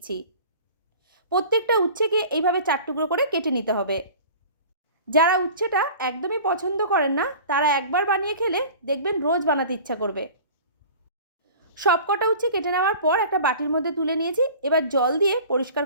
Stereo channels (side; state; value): both; inverted; correlation -0.42